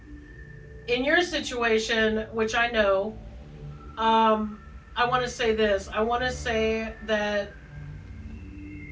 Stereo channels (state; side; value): identical; both; correlation 1.00